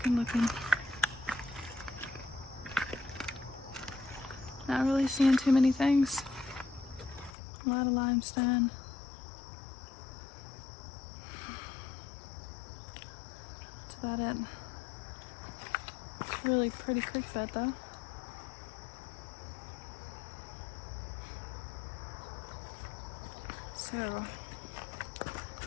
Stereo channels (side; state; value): right; drops out; at 7.4 s